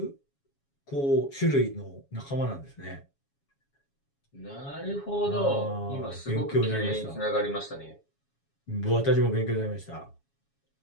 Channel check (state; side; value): late; right; 7.2 ms